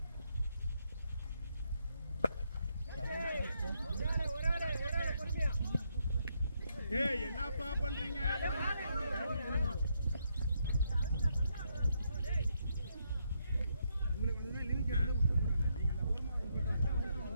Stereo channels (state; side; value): inverted; both; correlation -0.77